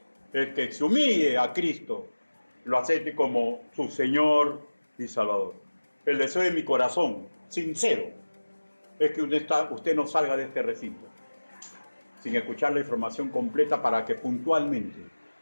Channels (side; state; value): both; inverted; correlation -1.00